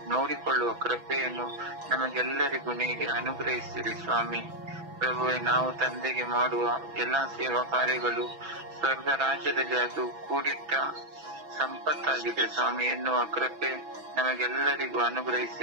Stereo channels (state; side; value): late; left; 6.0 ms